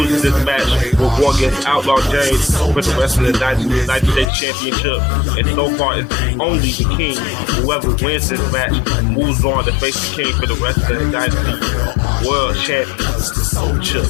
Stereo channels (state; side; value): drops out; right; at 4.3 s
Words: this match will go against Outlaw James for the Wrestling Dynasty United States Championship. And so far, it's only the King. Whoever wins this match moves on to face the King for the Wrestling Dynasty World Championship.